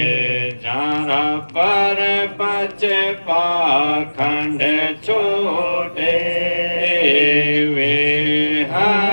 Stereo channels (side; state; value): both; inverted; correlation -1.00